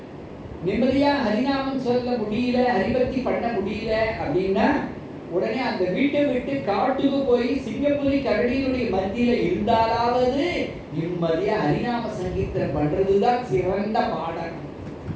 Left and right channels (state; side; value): identical; both; correlation 1.00